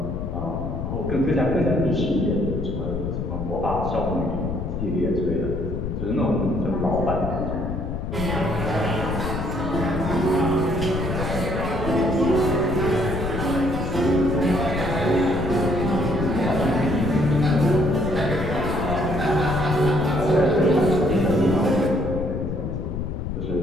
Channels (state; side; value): noise; left; rumble, 4 dB below the sound